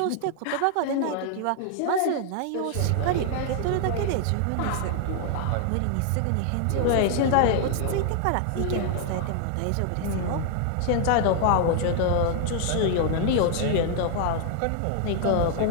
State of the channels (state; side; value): different; both; correlation 0.00